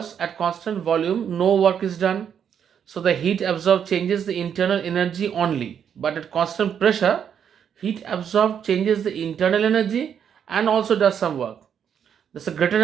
at constant volume, no work is done, so the heat absorbed changes the internal energy only. But at constant pressure, heat absorbed changes the internal energy and also does some work. Thus, a greater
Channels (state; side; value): quieter; left; 8.2 dB